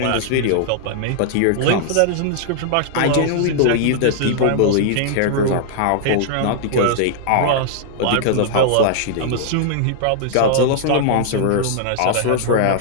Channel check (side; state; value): both; different; correlation -0.01